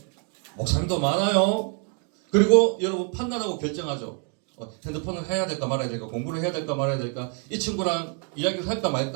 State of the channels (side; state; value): left; quieter; 38.3 dB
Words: 목사님도 많아요. 그리고 여러분 판단하고 결정하죠. 핸드폰을 해야 될까 말아야 될까, 공부를 해야 될까 말아야 될까, 이 친구랑 이야기를 할까